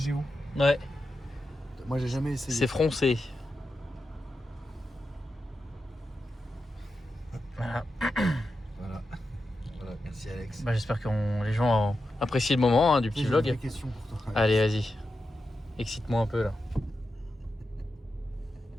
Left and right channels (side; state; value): both; normal; correlation 0.89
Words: Ouais, Moi, j'ai jamais essayé. c'est froncé. Voilà. Voilà, merci Alex. Bah, j'espère que les gens ont apprécié le moment hein, du petit J'ai vlog. une vraie question pour toi. Allez, vas-y. Excite-moi un peu là.